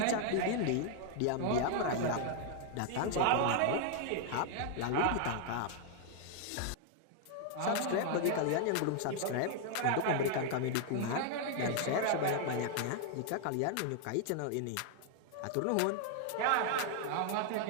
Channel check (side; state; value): both; different; correlation 0.00